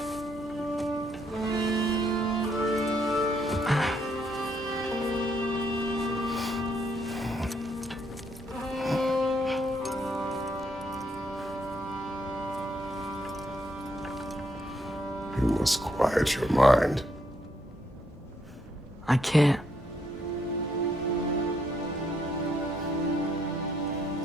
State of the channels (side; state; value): both; normal; correlation 0.73